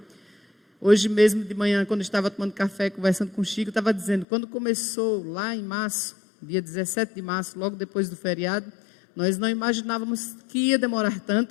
Hoje mesmo de manhã, quando eu estava tomando café, conversando com o Chico, eu estava dizendo, quando começou lá em março, dia 17 de março, logo depois do feriado, nós não imaginávamos que ia demorar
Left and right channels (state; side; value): drops out; right; at 4.2 s